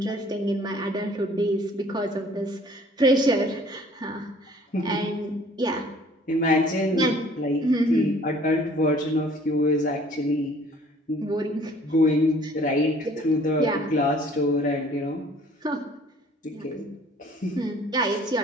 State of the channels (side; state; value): both; normal; correlation 0.54